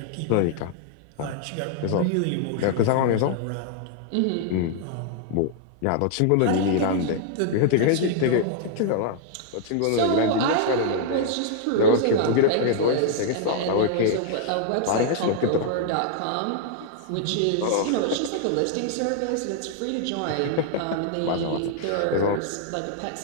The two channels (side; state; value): both; different; correlation -0.01